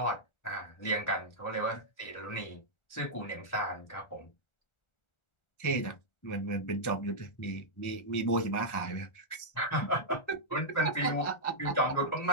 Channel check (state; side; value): late; right; 1.4 ms